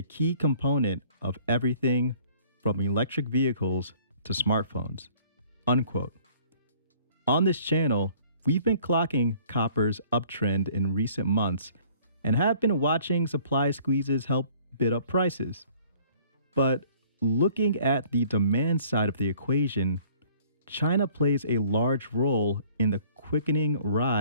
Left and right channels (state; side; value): inverted; both; correlation -0.56